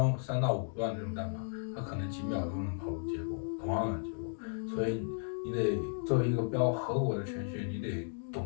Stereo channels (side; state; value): right; silent; digital silence